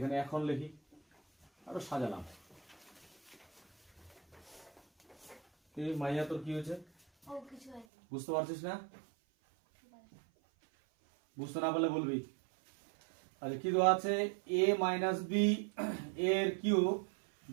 এখন লিখি আরো সাজালাম কি মাইয়া তোর কি হয়েছে ও কিছু হয়নি বুঝতে পারছিস না বুঝতে না পারলে বলবি আচ্ছা কি দেওয়া আছে a মাইনাস b এর কিউব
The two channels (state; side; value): drops out; left; at 7.9 s